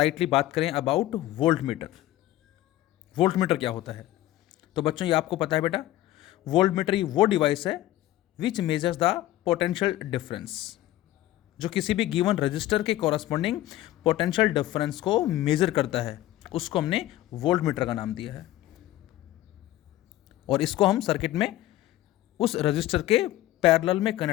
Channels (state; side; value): quieter; right; 15.1 dB